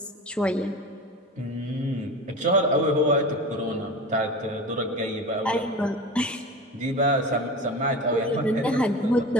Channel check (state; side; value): normal; both; correlation 0.31